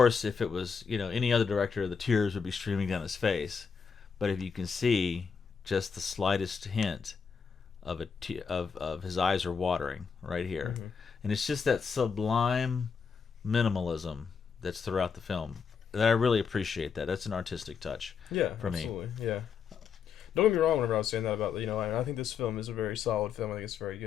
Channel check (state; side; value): quieter; right; 6.1 dB